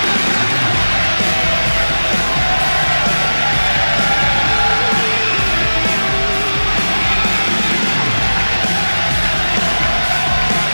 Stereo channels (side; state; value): both; inverted; correlation -1.00